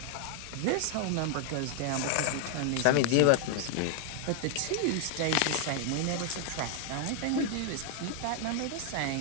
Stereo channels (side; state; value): both; different; correlation 0.00